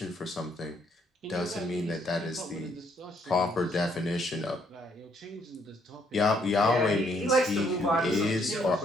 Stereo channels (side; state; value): both; normal; correlation 0.69